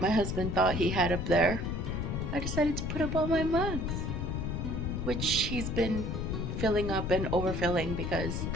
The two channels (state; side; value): noise; left; rumble, 2 dB below the sound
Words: my husband thought he had up there, I decided to put up all my mugs, which he's been filling up and overfilling because